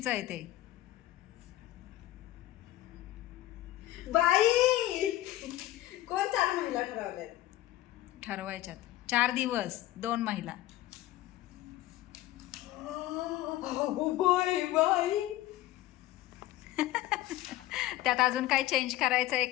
आहे ते. बाई कोण 4 महिला ठरवल्यात. ठरवायच्यात 4 दिवस 2 महिला. अगो बाई बाई. त्यात अजून काय चेंज करायचं आहे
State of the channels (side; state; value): right; quieter; 15.5 dB